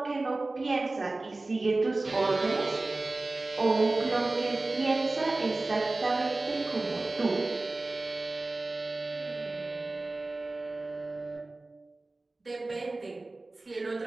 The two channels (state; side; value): quieter; left; 3.1 dB